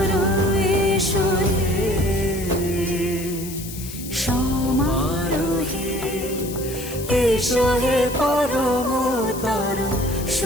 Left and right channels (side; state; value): left; noise; hiss, 12 dB below the sound